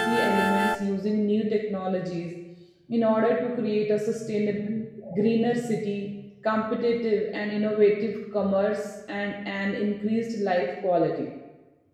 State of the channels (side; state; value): both; identical; correlation 1.00